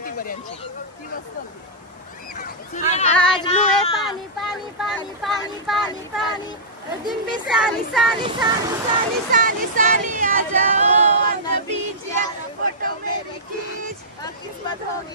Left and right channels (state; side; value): normal; both; correlation -0.15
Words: बऱ्यांची ती मस्त होती आज ब्लू है पानी पानी पानी पानी पानी पानी दिन भी सानी सानी सानी सानी सानी सानी आ जाओ on the beach यार फोटो मेरी खींच किस्मत